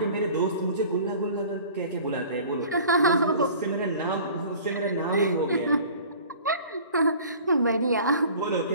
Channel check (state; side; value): inverted; both; correlation -0.45